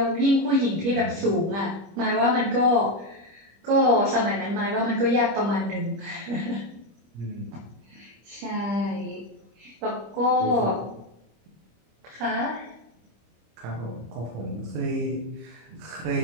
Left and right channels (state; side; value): late; left; 25 ms